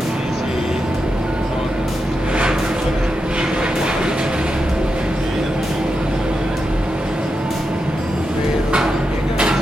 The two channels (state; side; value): normal; both; correlation 0.87